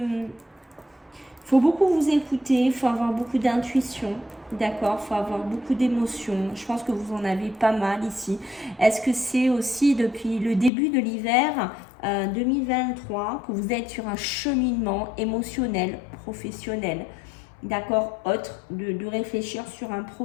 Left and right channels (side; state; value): right; drops out; at 10.7 s